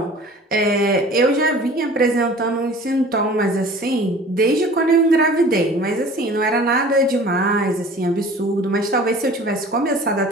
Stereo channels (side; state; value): both; normal; correlation 0.45